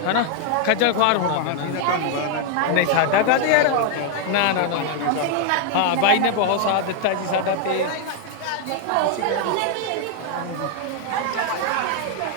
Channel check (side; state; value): both; different; correlation 0.00